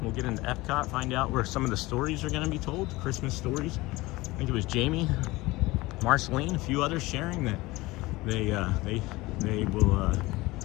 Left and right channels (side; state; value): right; quieter; 20.7 dB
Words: We'll get into Epcot, find out where some of the stories are gonna be told, Christmas stories. I think it was Jamie, Marceline, a few others sharing that they will